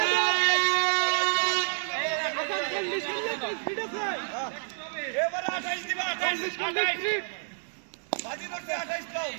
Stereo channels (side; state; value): left; silent; 59 dB below the other